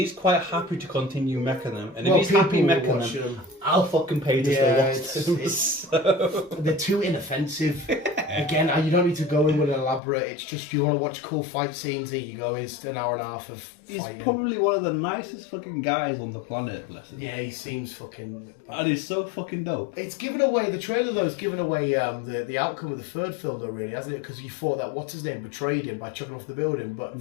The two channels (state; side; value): drops out; right; at 10.0 s